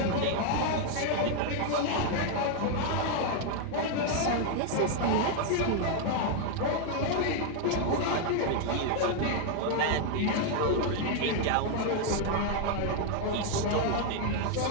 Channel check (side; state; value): both; different; correlation 0.00